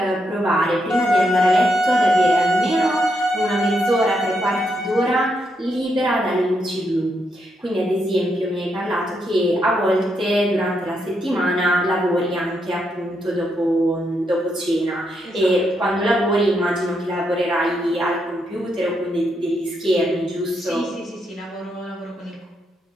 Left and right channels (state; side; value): normal; both; correlation 0.80